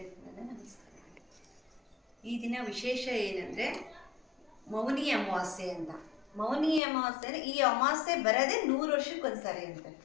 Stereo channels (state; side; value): drops out; right; at 6.8 s